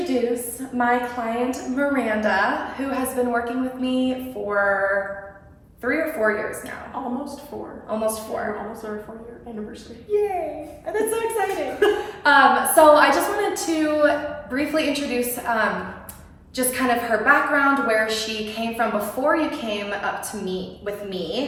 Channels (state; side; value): identical; both; correlation 1.00